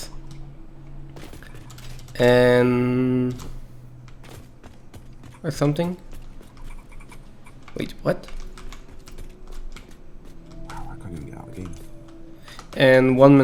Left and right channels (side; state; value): both; identical; correlation 1.00